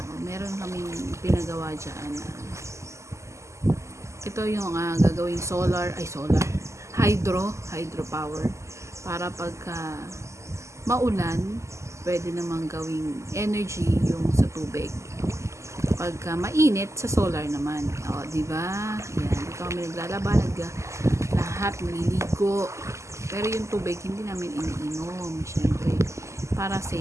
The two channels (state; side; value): late; left; 0.14 ms